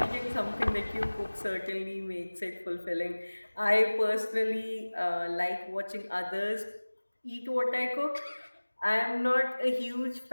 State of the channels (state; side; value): inverted; both; correlation -1.00